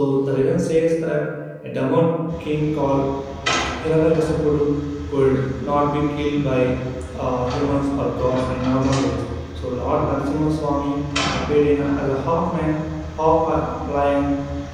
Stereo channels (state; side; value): identical; both; correlation 1.00